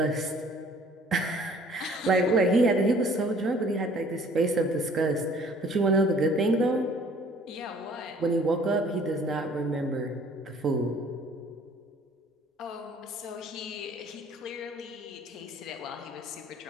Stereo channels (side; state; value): both; normal; correlation 0.55